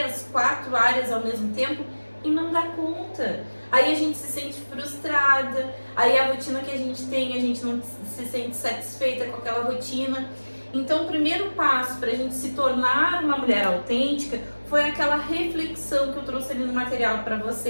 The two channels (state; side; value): inverted; both; correlation -1.00